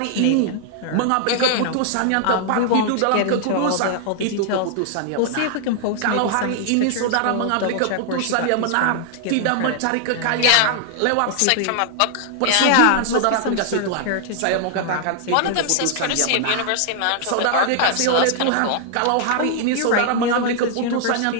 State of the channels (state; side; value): different; both; correlation 0.00